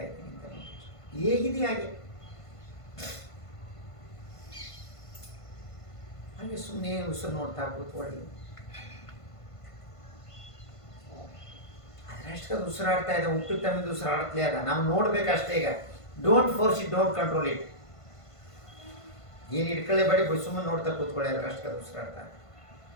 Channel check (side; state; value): right; late; 1.5 ms